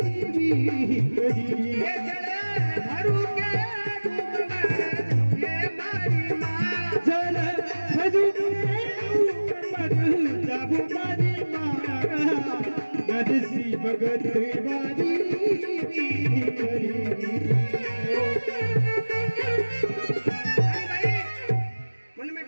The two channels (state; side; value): inverted; both; correlation -1.00